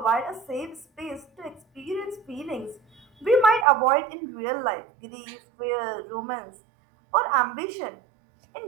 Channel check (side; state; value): left; drops out; at 3.7 s